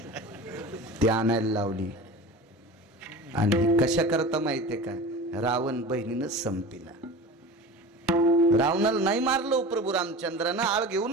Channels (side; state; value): both; normal; correlation 0.34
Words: ते आणायला लावली. आणि कशा करता माहितीये का? रावण बहिणीनं संपीला. रावणाला नाही मारलं प्रभू रामचंद्रानं, आळ घेऊ